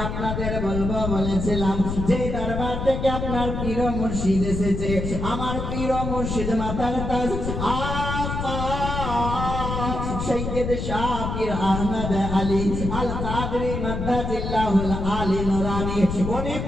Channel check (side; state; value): left; noise; rumble, 3 dB below the sound